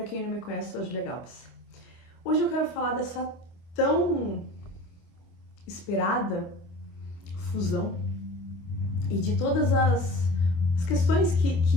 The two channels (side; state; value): right; late; 26 ms